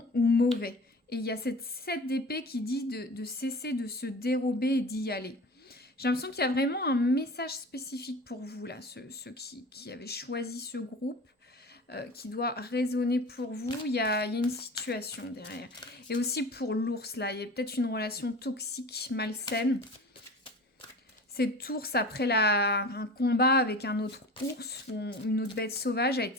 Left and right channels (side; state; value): both; normal; correlation 0.37